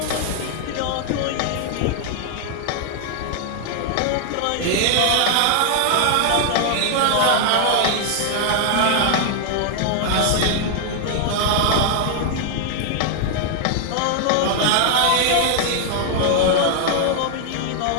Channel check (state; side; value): different; both; correlation 0.00